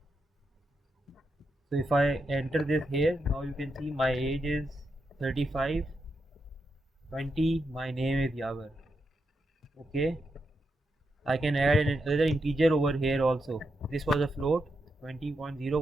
So if I enter this here, now you can see my age is 35, 20, my name is Jawar. Okay, I can add another integer over here also. This was a float, 20.0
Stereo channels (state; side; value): normal; both; correlation 0.84